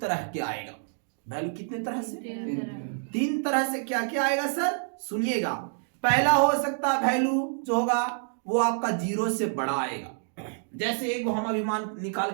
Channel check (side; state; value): left; silent; digital silence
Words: के आएगा। वैल्यू कितने तरह से? 3 तरह से। क्या क्या आएगा सर? सुनिएगा। पहला हो सकता है वैल्यू जो होगा वो आपका 0 से बड़ा आएगा। जैसे एक हम अभी मान निकाल